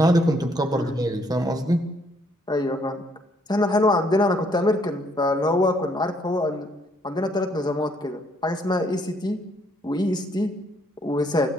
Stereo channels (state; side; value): normal; both; correlation 0.68